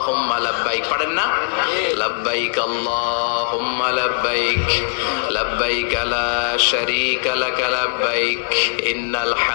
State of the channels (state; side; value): silent; right; 56 dB below the other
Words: লাব্বাইক। পারেন না? লাব্বাইক আল্লাহুম্মা লাব্বাইক, লাব্বাইক লা শারীকা লাকা লাব্বাইক, ইন্নাল